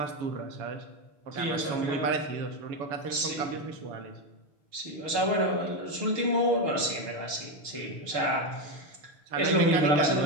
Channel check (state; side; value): late; left; 6.6 ms